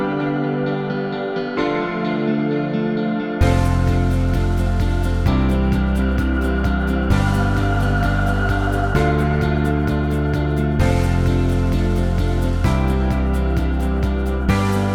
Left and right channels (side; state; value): both; identical; correlation 1.00